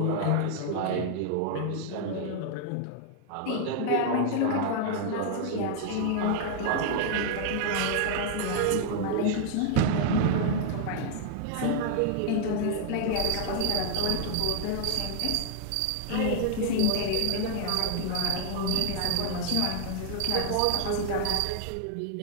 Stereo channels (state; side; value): different; both; correlation 0.00